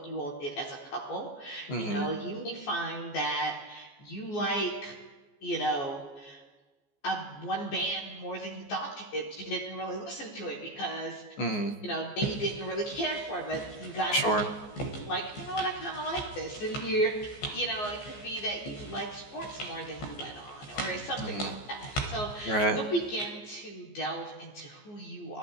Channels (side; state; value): right; late; 14 ms